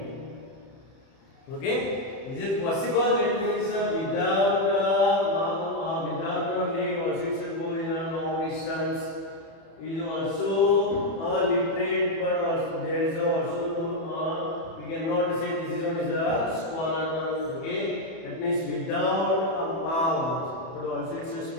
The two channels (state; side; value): late; right; 31 ms